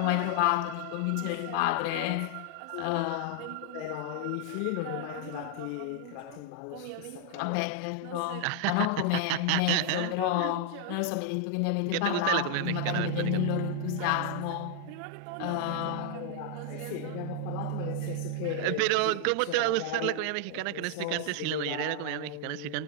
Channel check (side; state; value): both; different; correlation 0.00